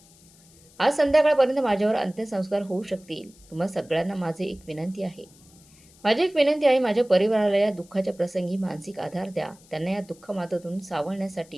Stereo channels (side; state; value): left; noise; hiss, 27 dB below the sound